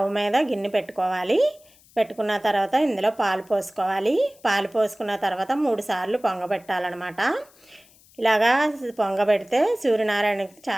మీద గిన్నె పెట్టుకోవాలి. పెట్టుకున్న తర్వాత ఇందులో పాలు పోసుకోవాలి. పాలు పోసుకున్న తర్వాత 3 సార్లు పొంగబెట్టాలన్నమాట. ఇలాగా పొంగబెడితే సూర్యనారాయణకి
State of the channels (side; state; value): left; noise; hiss, 28 dB below the sound